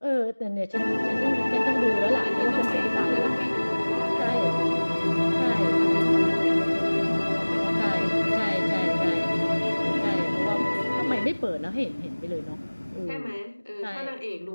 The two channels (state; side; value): inverted; both; correlation -1.00